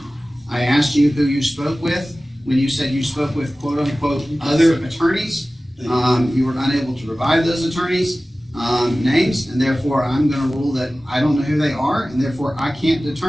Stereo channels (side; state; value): both; normal; correlation 0.97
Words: I asked you who you spoke with. When you said you spoke with quote-unquote other attorneys, you were unable to provide those attorneys' names, and therefore I'm going to rule that I don't know who they are, and therefore I can't